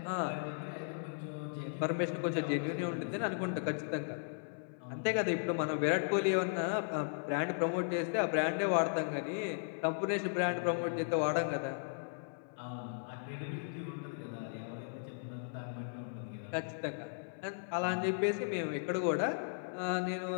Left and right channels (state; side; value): silent; right; 53 dB below the other